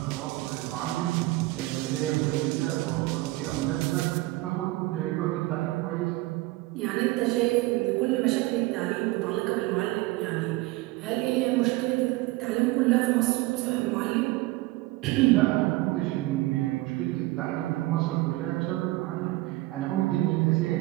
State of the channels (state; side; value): quieter; left; 19.7 dB